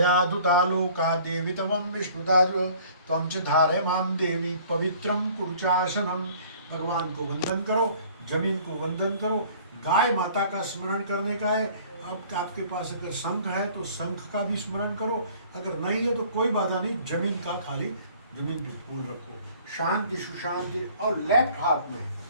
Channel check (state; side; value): inverted; both; correlation -0.52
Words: दुता लोका देवी तवम विष्णुदाद्र त्वं च धारय माम देवी पवित्रम कुरुचासनम। भगवान को वंदन करो, जमीन को वंदन करो। गाय माता का स्मरण करने का है। अब आपके पास अगर शंख है तो शंख का भी स्मरण करो, अगर नहीं है तो कोई बाधा नहीं, जमीन का खाली जमीन पे फूल रखो। शांति सुशांति। और लेफ्ट हाथ में,